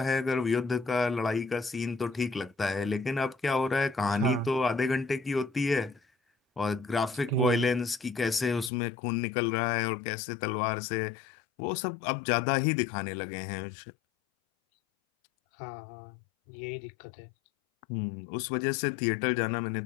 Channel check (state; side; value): drops out; right; at 8.7 s